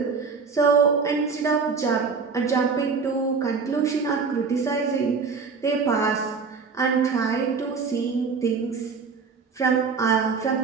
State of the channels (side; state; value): left; quieter; 5.1 dB